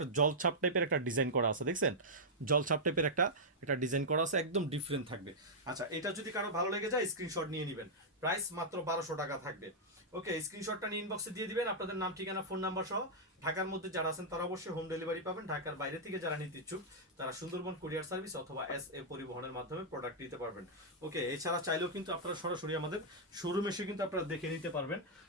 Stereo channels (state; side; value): normal; both; correlation -0.07